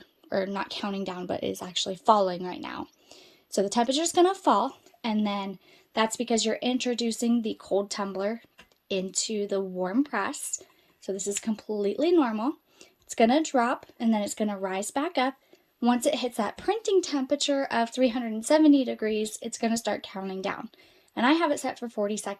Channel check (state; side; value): identical; both; correlation 1.00